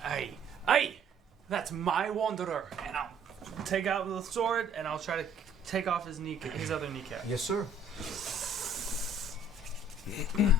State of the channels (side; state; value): both; normal; correlation 0.58